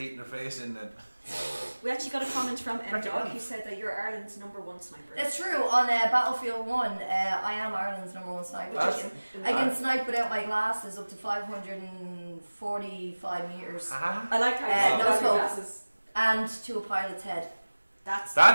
their face in then. We actually got a comment from M-Dog who said that you're Ireland's #1 sniper. It's true. On Battlefield 1, I am Ireland's #1 sniper. I can snipe without my glasses up to 545 metres. I like how you No got your scope. glasses. And to a pilot's head.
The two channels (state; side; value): inverted; both; correlation -1.00